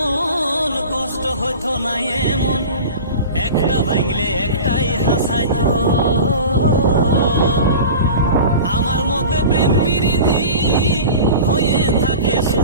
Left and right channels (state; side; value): inverted; both; correlation -0.34